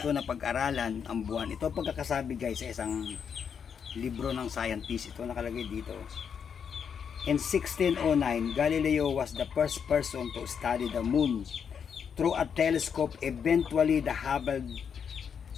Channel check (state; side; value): quieter; right; 7.1 dB